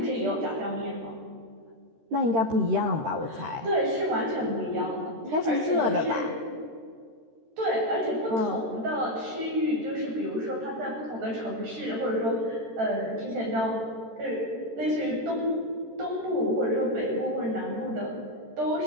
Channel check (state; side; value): late; left; 13 ms